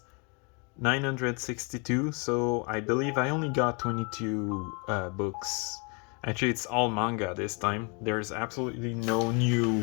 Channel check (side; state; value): right; quieter; 34.0 dB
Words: 962, so I believe I only got 22 books. Actually, it's all manga this time. There's absolutely no